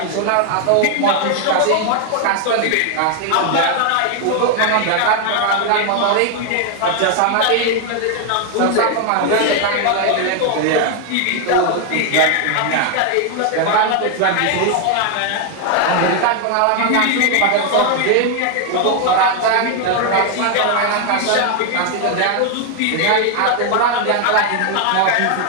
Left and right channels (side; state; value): both; different; correlation 0.00